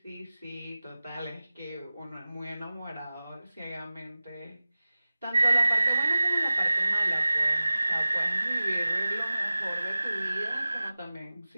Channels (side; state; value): both; inverted; correlation -0.97